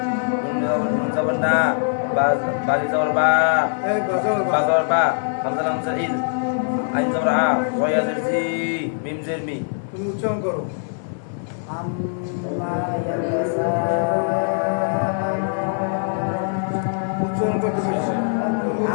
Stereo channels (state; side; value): silent; right; digital silence